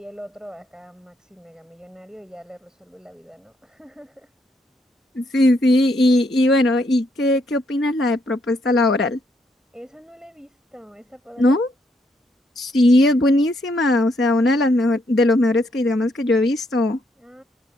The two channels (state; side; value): normal; both; correlation 0.74